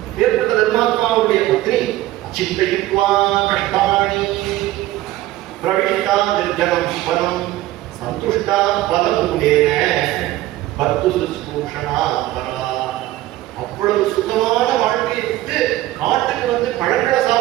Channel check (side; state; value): left; quieter; 15.8 dB